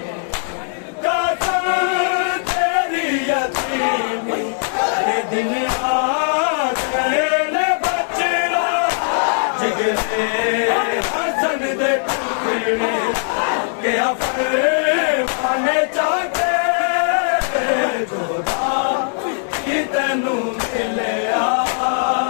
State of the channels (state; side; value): silent; right; digital silence